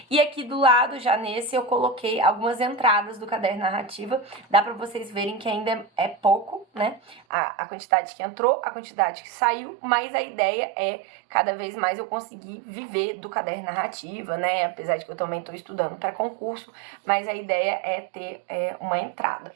E aqui do lado, já nesse, eu coloquei algumas entradas do caderno narrativa, dá pra vocês verem que ainda é pouco, né, a quantidade que entrou, a quantidade que saiu, mas a ideia é cada vez mais eu conseguir viver do caderno narrativa, né, apesar de que eu também tô estudando pra concurso, mas a ideia é ter uma entrada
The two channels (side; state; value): left; drops out; at 7.2 s